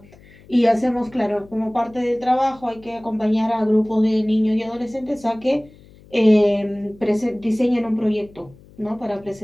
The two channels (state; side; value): noise; left; hum, 25 dB below the sound